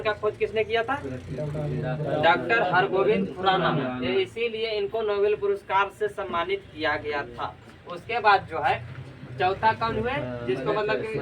का खोज किसने किया था? डॉक्टर हरगोविंद खुराना। इसीलिए इनको नोबेल पुरस्कार से सम्मानित किया गया था। उसके बाद जो है चौथा कौन हुए जिसको मतलब कि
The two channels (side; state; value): both; identical; correlation 1.00